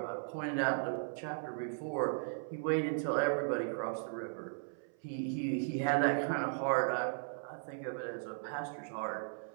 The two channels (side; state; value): left; silent; 53 dB below the other